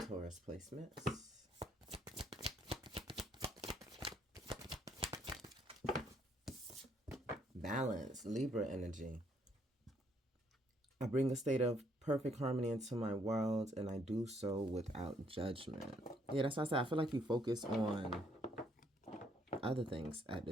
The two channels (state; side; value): normal; both; correlation 0.69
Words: placements? Balance, Libra energy. I bring a state of perfect harmony into my world, and I do so without judgment. Yeah, that's why I said I feel like you focus on other things at